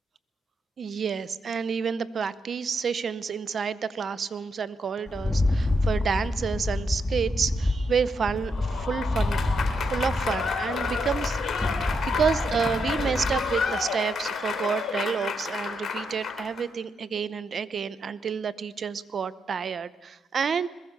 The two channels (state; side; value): normal; both; correlation 0.81